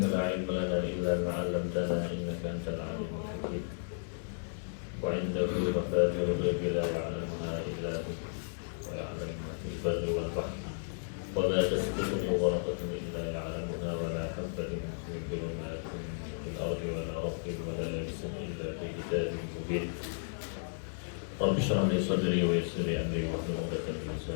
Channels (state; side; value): silent; right; digital silence